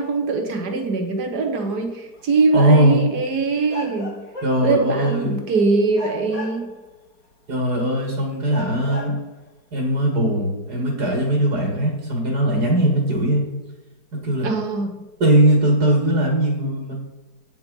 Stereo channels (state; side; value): late; left; 4.9 ms